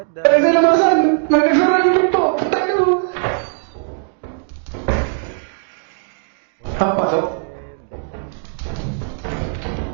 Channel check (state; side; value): silent; left; 67 dB below the other